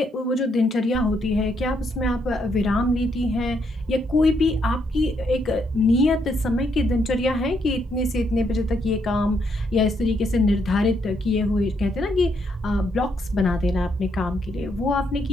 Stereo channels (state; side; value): normal; both; correlation 0.75